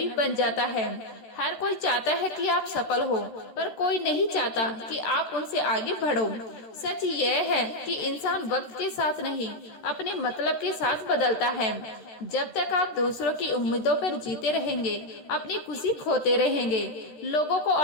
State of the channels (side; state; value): right; late; 13 ms